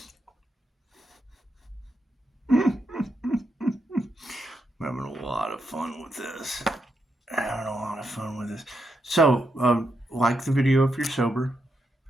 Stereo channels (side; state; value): both; normal; correlation 0.82